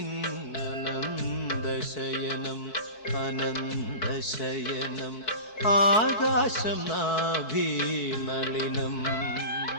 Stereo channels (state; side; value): late; right; 4.6 ms